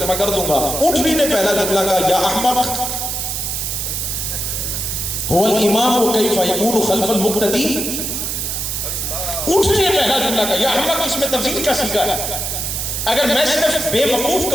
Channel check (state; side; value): noise; right; hiss, 2 dB below the sound